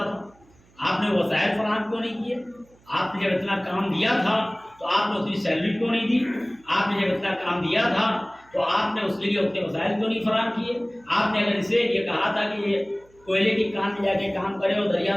تھا. آپ نے وسائل فراہم کیوں نہیں کیے؟ آپ نے جب اتنا کام دیا تھا تو آپ نے اتنی سیلری کیوں نہیں دی؟ آپ نے جب اتنا کام دیا تھا تو آپ نے اس کے لیے اتنے وسائل کیوں نہیں فراہم کیے؟ آپ نے اگر اسے یہ کہا تھا کہ یہ کوئلے کی کان میں جا کے کام کرے اور دریا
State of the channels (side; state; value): right; noise; hum, 30 dB below the sound